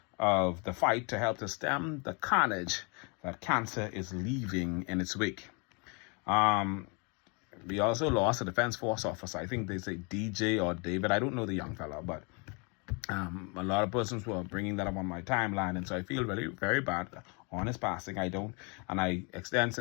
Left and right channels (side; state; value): right; quieter; 32.8 dB